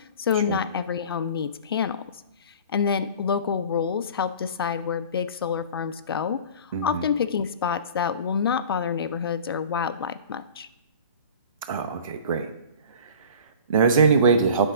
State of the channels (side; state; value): both; inverted; correlation -0.41